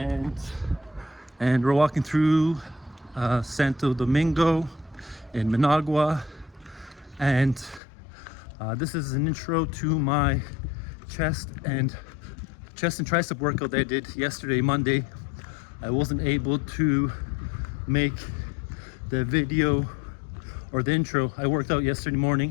we're walking through Santo Domingo in Managua. And this is an intro to my chest and tricep workout that I did yesterday, Monday. I wasn't able to make the video or the intro. I worked out yesterday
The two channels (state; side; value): drops out; right; at 7.8 s